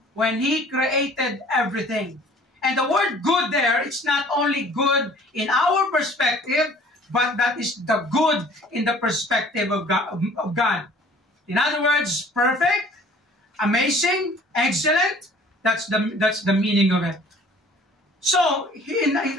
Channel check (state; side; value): normal; both; correlation 0.52